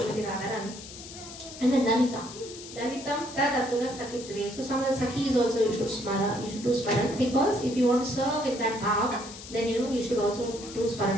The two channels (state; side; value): noise; left; hiss, 14 dB below the sound